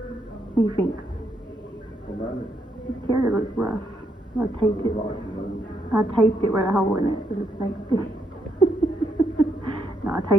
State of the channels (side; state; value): both; normal; correlation 0.77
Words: What do you think? This carrier looks rough. I taped it. I taped it right a hole in it. No, I